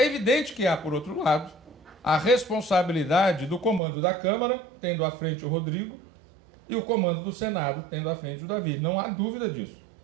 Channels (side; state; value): left; drops out; at 3.8 s